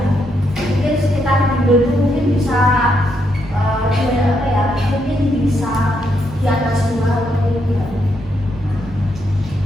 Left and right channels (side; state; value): both; normal; correlation 0.78